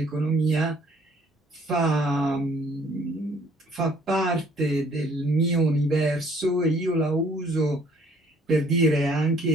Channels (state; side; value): normal; both; correlation 0.60